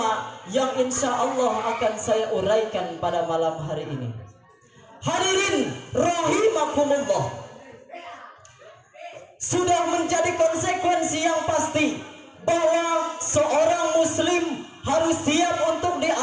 yang insya Allah akan saya uraikan pada malam hari ini. Hadirin rahimakumullah, sudah menjadi sebagai konsekuensi yang pasti bahwa seorang muslim harus siap untuk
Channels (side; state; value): both; identical; correlation 1.00